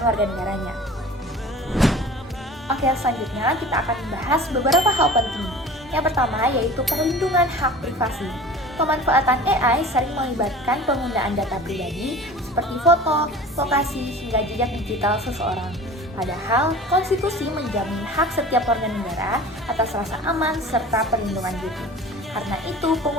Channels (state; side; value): normal; both; correlation 0.40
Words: warga negaranya. Oke, selanjutnya kita akan membahas beberapa hal penting. Yang pertama yaitu perlindungan hak privasi. Pemanfaatan AI sering melibatkan penggunaan data pribadi seperti foto, lokasi, hingga jejak digital seseorang. Padahal, konstitusi menjamin hak setiap warga negara atas rasa aman serta perlindungan diri. Karena itu,